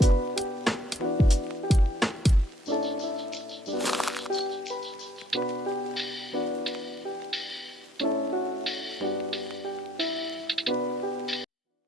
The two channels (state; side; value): normal; both; correlation 0.65